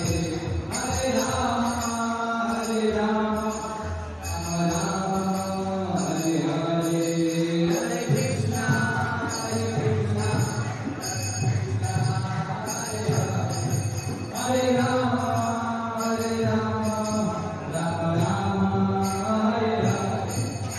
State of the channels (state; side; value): identical; both; correlation 1.00